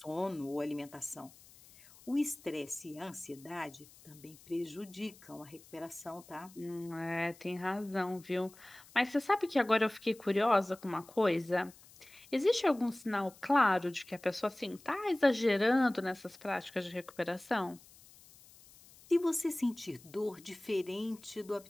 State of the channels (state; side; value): noise; left; hiss, 23 dB below the sound